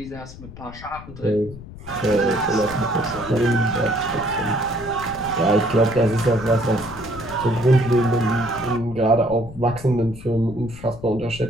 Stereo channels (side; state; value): left; noise; rumble, 15 dB below the sound